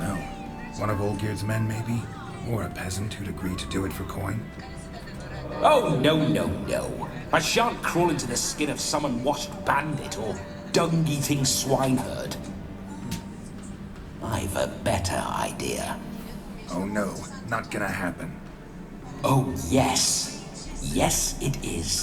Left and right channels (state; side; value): identical; both; correlation 1.00